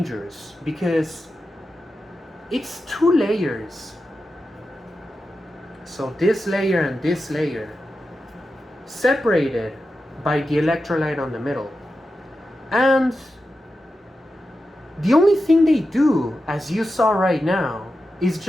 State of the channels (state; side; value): normal; both; correlation 0.91